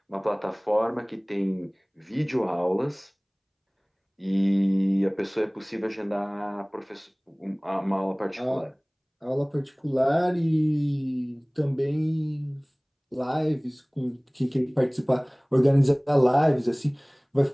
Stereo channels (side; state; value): both; identical; correlation 1.00